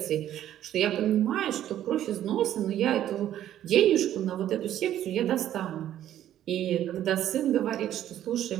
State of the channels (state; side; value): quieter; left; 11.8 dB